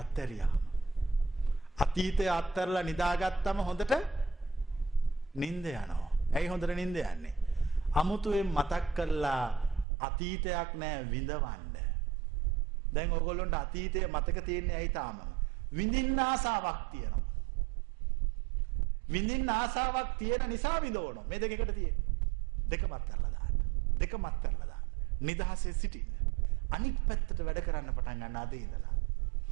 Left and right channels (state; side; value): drops out; left; at 9.9 s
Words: අතීතය අත්හැරලා නිදාගත්තම හොඳට නිින්ද යනවා. ඇයි හොඳට නිින්ද යන්නේ? අමුතුවෙන් මතක් කරලා අතීතයක් නෑ විඳවන්න. දැන් ඔයගොල්ලන්ට අතීතය මතක තියෙන්නේ ඇයි තාම? විඳින්න ආසාවක් තියෙනවා. විඳින්න ආසාවක් තියෙන නිසා විඳවනවා. මේ දෙක එකට තියෙන්නේ. දෙකම අත්හැරලා දාන්න. දෙකම අත්හැරලා දාන්න. නිදහසේ සිටින්න. අනිත් පැත්තට වැඩ කරන්න පටන් ගන්න අද ඉඳලා.